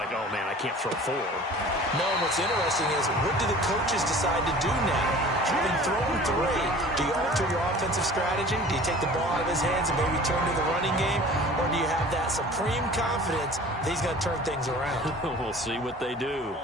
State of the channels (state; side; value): normal; both; correlation 0.44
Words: oh, man, I can't throw 4. No, what's interesting is, what do the coaches decide to do now? Having thrown 3, do you alter your offensive strategy? Do you take the ball out of his hands and maybe turn to the running game? Or do you have that supreme confidence that he's going to turn things around? We'll see what they do.